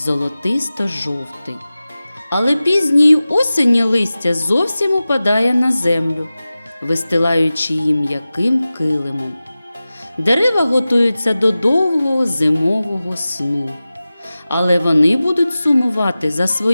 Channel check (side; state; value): both; inverted; correlation -0.96